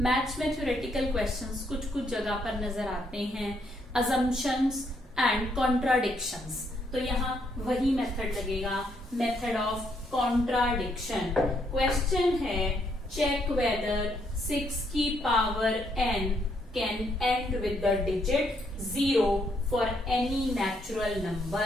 Maths में थ्योरेटिकल क्वेश्चंस कुछ कुछ जगह पर नजर आते हैं, अजम्पशंस एंड कॉन्ट्राडिक्शंस. तो यहाँ वही मेथड लगेगा, मेथड ऑफ कॉन्ट्राडिक्शन. क्वेश्चन है, चेक वेदर 6 की power n can and with the digit 0 for any natural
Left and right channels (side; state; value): both; normal; correlation 0.73